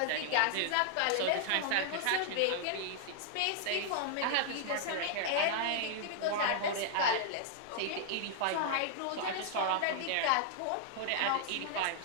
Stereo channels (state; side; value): different; both; correlation -0.01